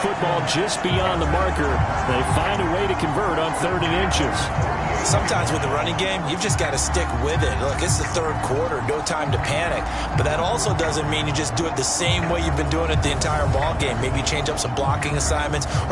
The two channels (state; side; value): identical; both; correlation 1.00